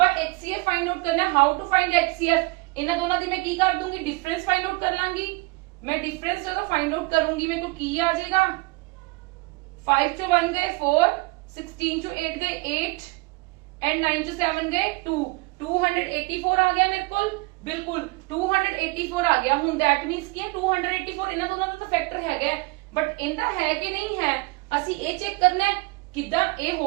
HCF ਫਾਈਂਡ ਆਊਟ ਕਰਨਾ, ਹਾਊ ਟੂ ਫਾਈਂਡ HCF। ਇਹਨਾਂ ਦੋਨਾਂ ਦੀ ਮੈਂ ਕੀ ਕਰ ਦੂੰਗੀ, ਡਿਫਰੈਂਸ ਫਾਈਂਡ ਆਊਟ ਕਰ ਲਾਂਗੀ। मैं डिफरेंस ਜਦੋਂ फाइंड आउट करूंगी मेरे को ਕੀ ਆ ਜਾਏਗਾ, 5 ਚੋਂ 1 ਗਏ 4, 16 ਚੋਂ 8 ਗਏ 8 एंड 9 ਚੋਂ 7 ਗਏ 2, 284 ਆ ਗਿਆ ਮੇਰੇ ਕੋਲ। ਬਿਲਕੁਲ 284 ਆ ਗਿਆ। ਹੁਣ ਦੈਟ ਮੀਨਸ ਕੀ ਹੈ 284 ਇਹਨਾਂ ਦੋਨਾਂ ਦਾ ਤਾਂ ਫੈਕਟਰ ਹੈਗਾ, ਬਟ ਇਹਦਾ ਹੈ ਕਿ ਨਹੀਂ ਹੈ ਅਸੀਂ ਇਹ ਚੈੱਕ ਕਰਨਾ ਹੈ। ਕਿਦਾਂ ਇਹ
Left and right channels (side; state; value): left; quieter; 25.3 dB